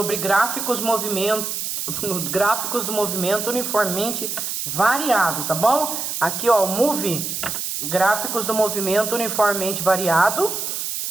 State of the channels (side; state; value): right; noise; hiss, 3 dB below the sound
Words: gráficos do movimento uniformemente variado, tá bom? Aqui, ó, o Move, gráficos do movimento uniformemente variado.